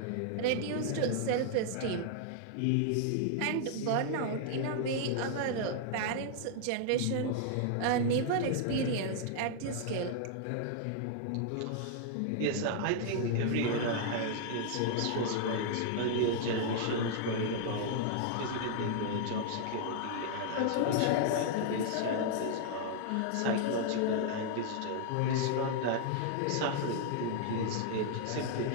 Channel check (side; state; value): both; different; correlation 0.00